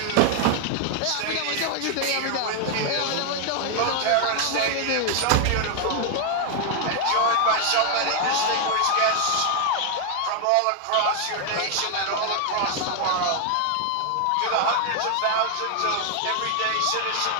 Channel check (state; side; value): different; both; correlation 0.00